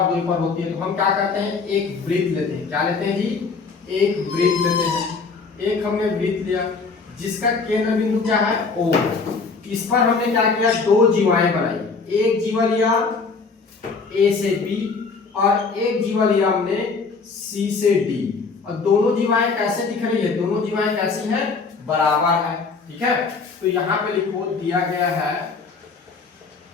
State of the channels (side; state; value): right; quieter; 4.6 dB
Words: दूरी पर होती है। तो हम क्या करते हैं, एक वृत्त लेते हैं। क्या लेते हैं जी, एक वृत्त लेते हैं। एक हमने वृत्त लिया जिसका केंद्र बिंदु क्या है, O। इस पर हमने क्या किया, दो जीवाएं बनाई। एक जीवा लिया A से B और एक जीवा लिया हमने C से D। और दोनों जीवाएं कैसे दिख रही है, दोनों जीवाएं कैसी हैं, बराबर है, ठीक है। तो यहाँ पे लिखो दिया गया है,